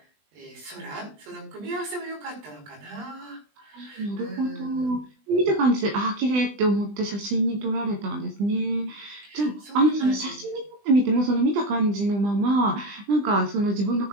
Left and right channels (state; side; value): late; left; 20 ms